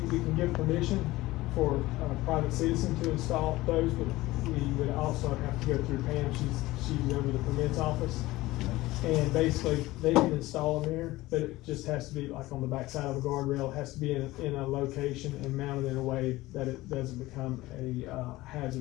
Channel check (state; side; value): quieter; right; 18.4 dB